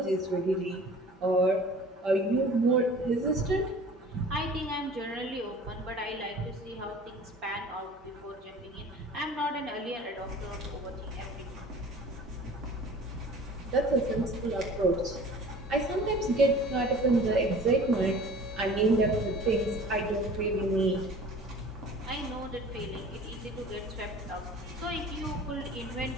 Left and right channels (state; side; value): normal; both; correlation 0.44